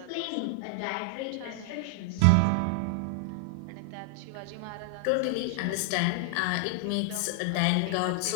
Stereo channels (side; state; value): both; different; correlation -0.01